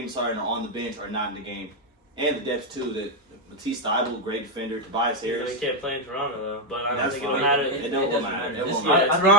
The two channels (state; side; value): normal; both; correlation 0.02